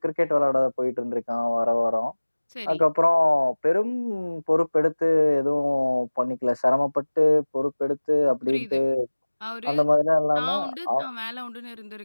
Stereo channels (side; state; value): both; inverted; correlation -1.00